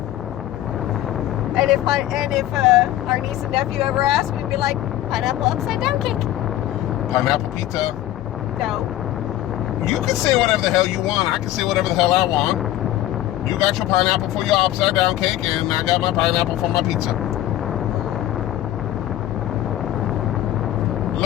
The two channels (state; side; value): quieter; right; 13.8 dB